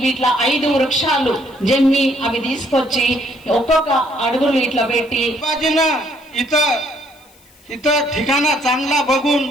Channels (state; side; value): noise; left; hiss, 29 dB below the sound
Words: వీటిలో 5 వృక్షాలు జమ్మి అవి తీసుకొచ్చి ఒక్కొక్క అడుగులు ఇట్లా పెట్టి इथं ठिकाणा चांगला बघून